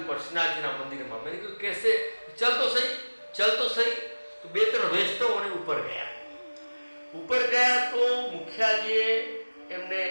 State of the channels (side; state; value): both; inverted; correlation -1.00